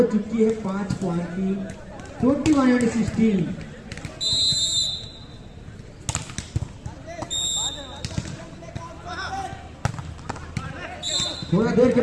चुकी है 5 पॉइंट की, 21-16। थोड़ा देर के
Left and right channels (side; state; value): both; identical; correlation 1.00